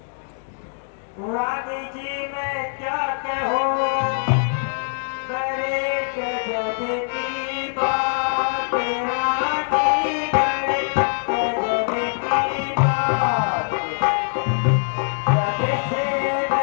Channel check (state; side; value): silent; right; digital silence